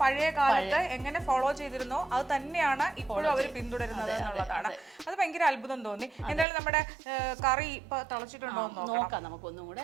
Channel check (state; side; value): drops out; left; at 6.5 s